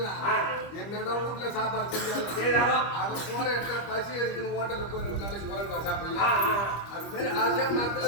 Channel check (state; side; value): late; right; 25 ms